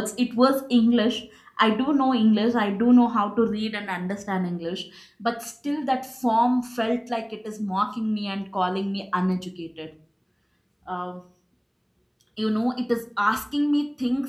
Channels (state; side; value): identical; both; correlation 1.00